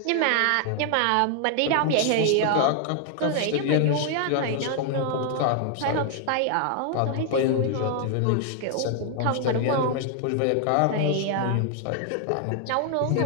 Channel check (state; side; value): different; both; correlation 0.00